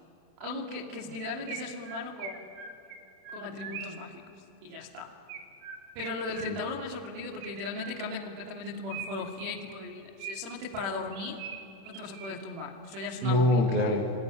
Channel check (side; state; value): left; late; 31 ms